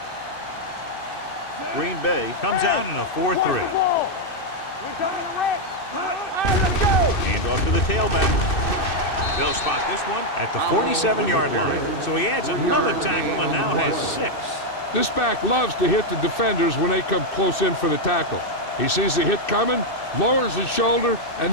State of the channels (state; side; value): late; right; 2.6 ms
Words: Green Bay comes out in a 4-3. Hand off to the tailback. They'll spot this one at the 47-yard line. So he adds another tackle and now has 6. This back loves to hit the defenders when they come close in for the tackle. He sees the hit coming, lowers his shoulder, and